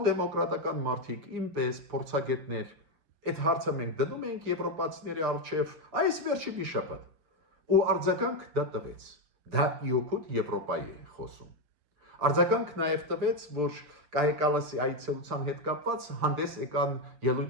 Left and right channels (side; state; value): left; late; 6.7 ms